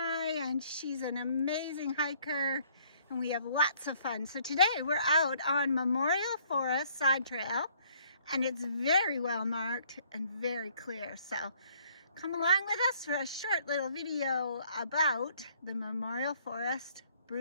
and she's an amazing hiker, and we have lots of fun. So today we're out on Memorial Forest Side Trail, and it's very well marked and very clear. So come along with us for a short little video about the Memorial Forest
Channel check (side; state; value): both; inverted; correlation -0.62